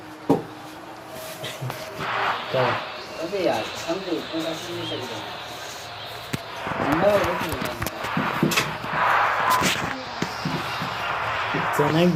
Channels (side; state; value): both; identical; correlation 1.00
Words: अबे यार हम तो नहीं सकते. चनक